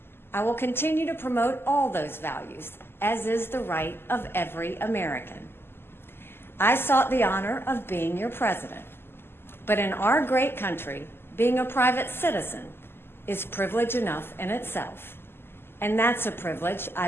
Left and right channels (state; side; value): late; right; 0.11 ms